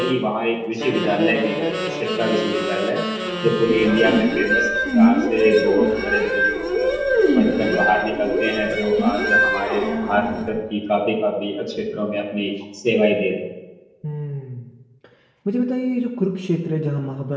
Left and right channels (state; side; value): identical; both; correlation 1.00